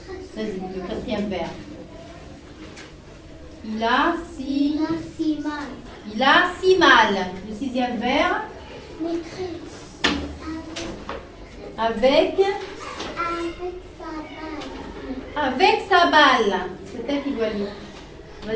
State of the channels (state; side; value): identical; both; correlation 1.00